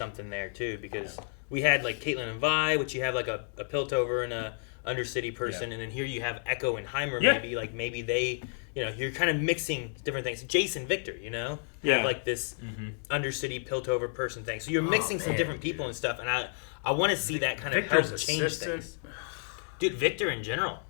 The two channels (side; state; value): right; silent; 57 dB below the other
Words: there too, because we had like Caitlyn and Vi, which you have like a Piltover and a Undercity person, and then here you have Echo and Heimer. Maybe they, you know, you're kind of mixing different things. Jason Victor, you know, have like this Undercity Piltover person thing. So you're mixing some different people and stuff, and I want to see that kind of help change things. Dude, Victor in general,